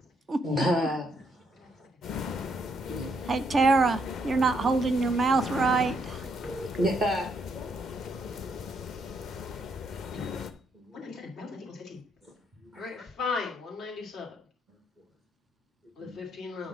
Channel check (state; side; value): normal; both; correlation 0.73